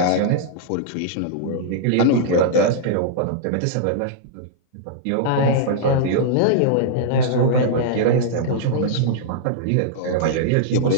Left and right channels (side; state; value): both; different; correlation -0.01